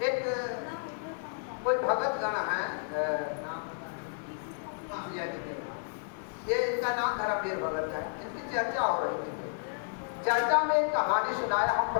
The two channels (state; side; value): silent; right; digital silence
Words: एक कोई भगत गण है, नाम ये इनका नाम धर्मवीर भगत है, इनकी चर्चा हो रही थी। चर्चा में एक कहानी सुनाया, हम